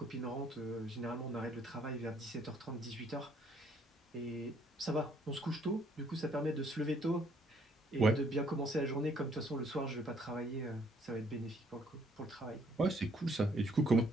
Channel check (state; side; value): normal; both; correlation 0.65